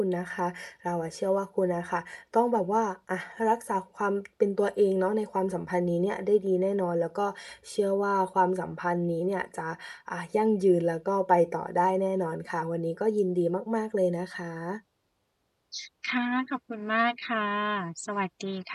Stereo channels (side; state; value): both; identical; correlation 1.00